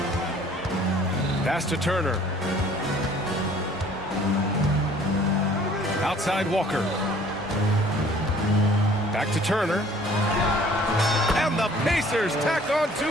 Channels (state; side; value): normal; both; correlation 0.54